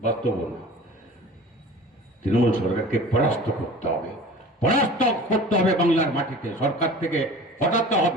বাস্তব না। তৃণমূল সরকারকে পরাস্ত করতে হবে, পরাস্ত করতে হবে বাংলার মাটিতে, সরকার থেকে হটাতে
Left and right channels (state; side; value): normal; both; correlation 0.41